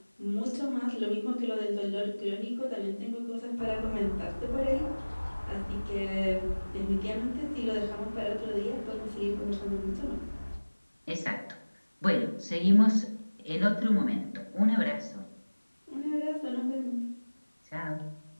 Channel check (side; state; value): both; inverted; correlation -1.00